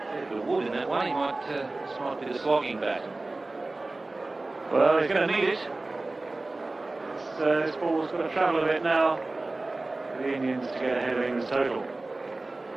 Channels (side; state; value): left; quieter; 3.1 dB